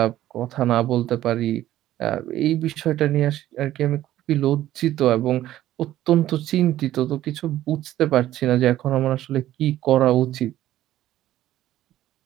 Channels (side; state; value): left; quieter; 13.6 dB